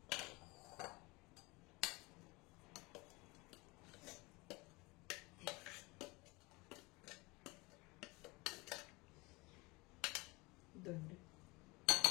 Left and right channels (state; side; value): quieter; right; 24.7 dB